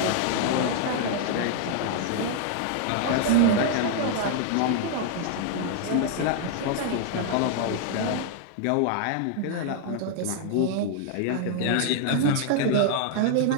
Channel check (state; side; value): different; both; correlation 0.00